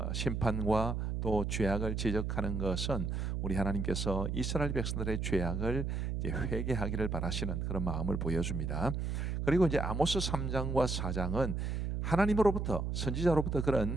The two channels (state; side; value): noise; right; hum, 1 dB below the sound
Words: 심판과 또 죄악을 지적하는 것은 우리 하나님께서 이스라엘 백성들의 죄악을 이제 회개하기를 바라시는 그런 마음을 보여줍니다. 그리고 이제 아모스 3장과 4장은 하나님으로부터 선지자로부터